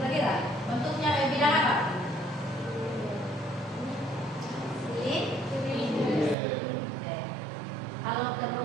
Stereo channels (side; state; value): left; drops out; at 6.4 s